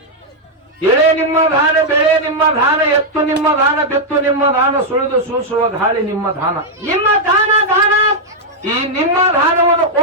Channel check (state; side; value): normal; both; correlation -0.02